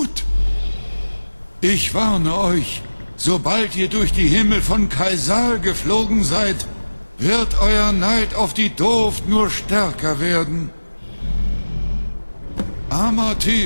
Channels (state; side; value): inverted; both; correlation -1.00